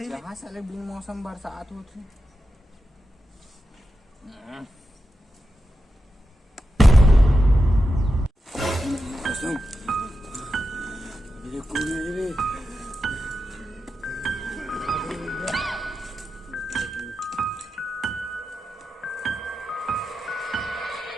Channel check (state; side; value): normal; both; correlation 0.90